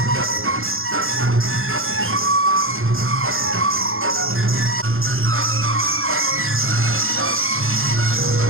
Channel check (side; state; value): left; late; 0.60 ms